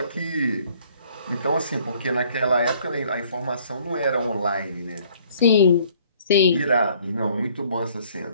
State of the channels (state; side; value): inverted; both; correlation -0.59